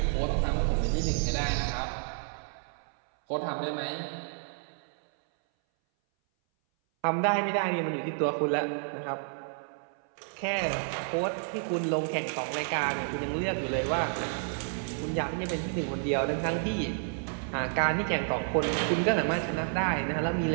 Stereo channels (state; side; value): silent; left; 58 dB below the other